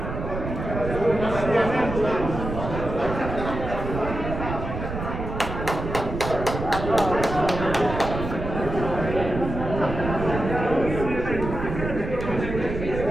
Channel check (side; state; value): right; noise; rumble, 6 dB below the sound